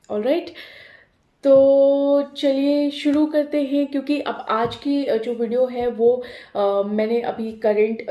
ऑलराइट, तो चलिए शुरू करते हैं। क्योंकि अब आज की जो वीडियो है वो मैंने अभी करंट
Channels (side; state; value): both; identical; correlation 1.00